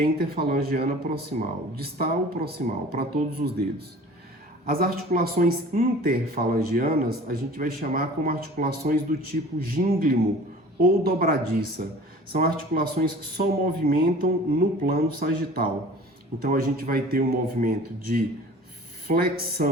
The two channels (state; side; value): normal; both; correlation 0.44